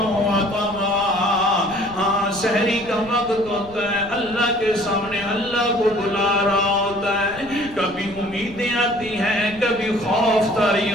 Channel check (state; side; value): noise; left; rumble, 19 dB below the sound